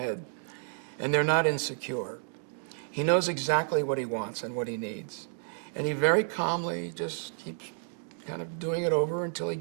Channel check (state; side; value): silent; left; 57 dB below the other